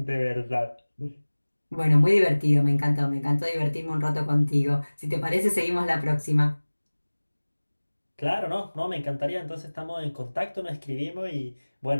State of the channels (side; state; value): both; inverted; correlation -1.00